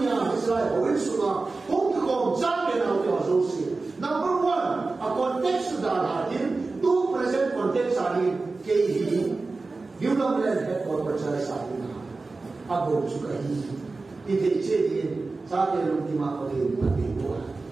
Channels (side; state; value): left; quieter; 3.7 dB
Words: इसराइल और सुना उनके कौन जाके ना उनके आज़ों से नंबर वन a context डाला है दो present context आने के ही यूनामैन है और बच्चा साथी ना अब हो चुका ही इधर चेरिए साथे लोग दिमाग पर ये बातें हुआ